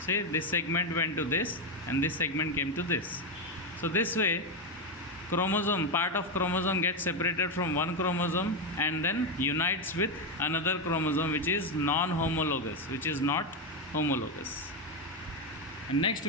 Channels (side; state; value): both; normal; correlation 0.08